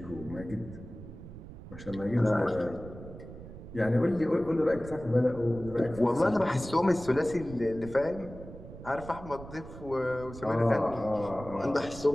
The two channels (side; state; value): right; noise; rumble, 14 dB below the sound